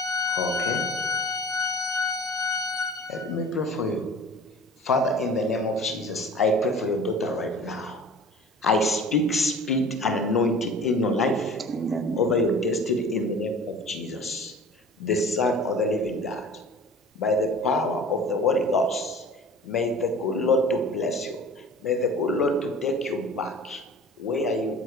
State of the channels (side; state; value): both; normal; correlation 0.42